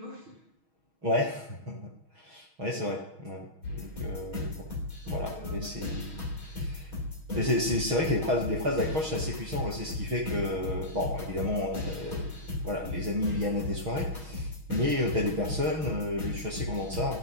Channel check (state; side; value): late; left; 6.3 ms